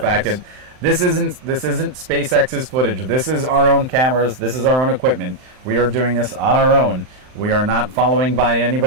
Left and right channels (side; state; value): left; late; 39 ms